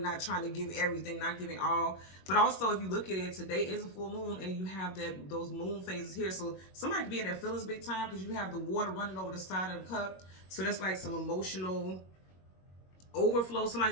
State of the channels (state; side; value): late; right; 21 ms